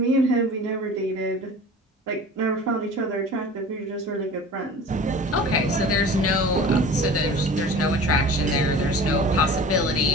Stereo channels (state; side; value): normal; both; correlation 0.40